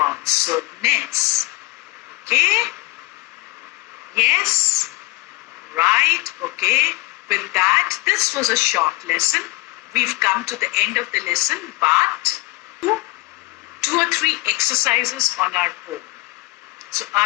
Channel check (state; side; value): quieter; right; 23.0 dB